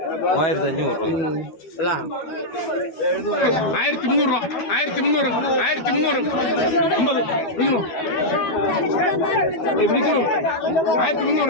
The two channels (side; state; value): right; late; 12 ms